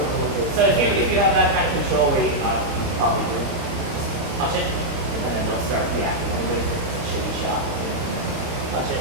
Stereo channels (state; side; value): late; left; 29 ms